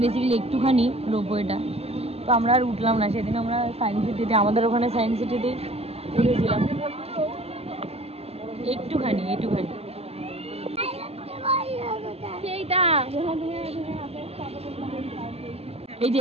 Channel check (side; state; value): left; late; 0.29 ms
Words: বেসিক্যালি একটুখানি রোপওয়েটা, তো আমরা আর উঠলাম না। সেদিন আমরা সায়েন্স সিটিতে, আমাদের ওখানে সায়েন্স সিটিতেই উঠেছিলাম একটুখানি একটুখানি। এই